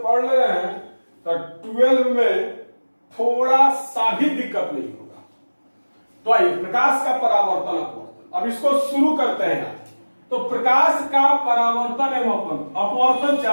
पढ़ ले रहे हैं, तो 12 में थोड़ा सा भी दिक्कत नहीं होगा। तो आइए प्रकाश का परावर्तन अपवर्तन, अब इसको शुरू करते हैं आज। तो प्रकाश का परावर्तन एवं अपवर्तन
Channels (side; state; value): both; inverted; correlation -1.00